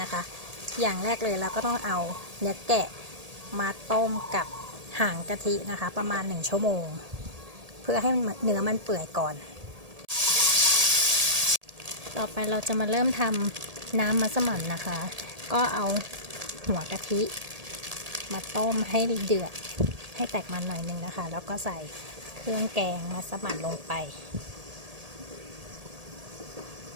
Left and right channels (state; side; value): late; left; 1.8 ms